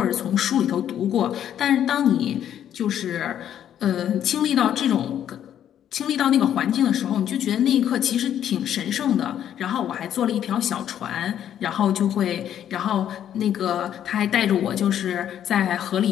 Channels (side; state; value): right; quieter; 10.2 dB